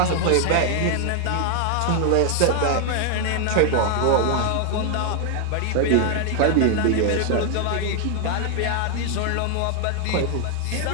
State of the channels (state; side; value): different; both; correlation 0.00